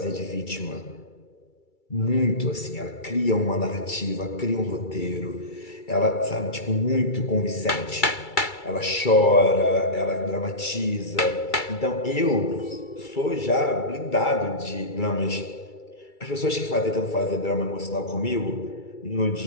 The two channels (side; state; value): right; late; 2.3 ms